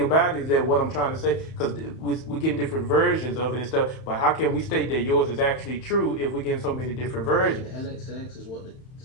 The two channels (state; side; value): late; right; 31 ms